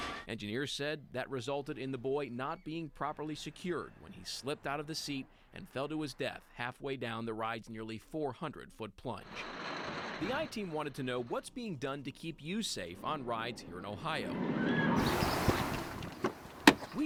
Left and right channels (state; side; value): identical; both; correlation 1.00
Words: Engineers said that resulted in the boy not being properly secured when he slipped out of the seat and fell to his death halfway down the ride's nearly 400-foot plunge. The I-Team wanted to know what's being done to keep you safe on rides here in Ohio.